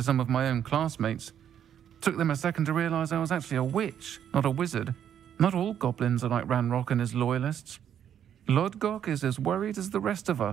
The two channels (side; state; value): left; quieter; 9.4 dB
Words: some of my own classmates. Took them a second to realize I was actually a witch, not a wizard. Not all goblins are like Ranrock and his loyalists. Lodgok is as worried as the rest of